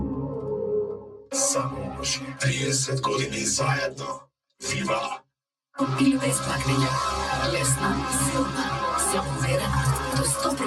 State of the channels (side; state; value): both; identical; correlation 1.00